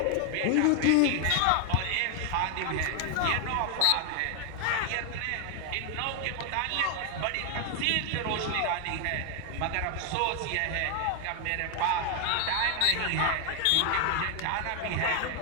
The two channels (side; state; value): both; different; correlation 0.00